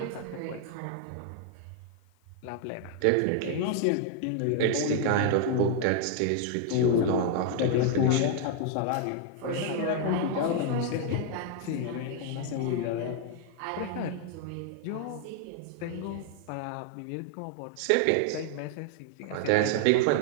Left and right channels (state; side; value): different; both; correlation 0.00